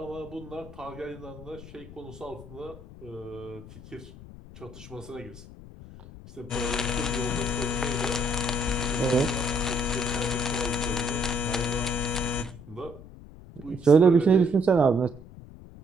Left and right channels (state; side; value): noise; left; rumble, 17 dB below the sound